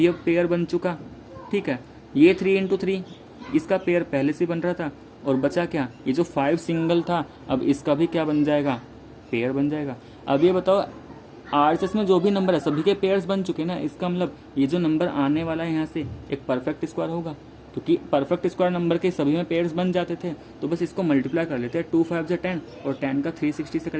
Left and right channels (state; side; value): identical; both; correlation 1.00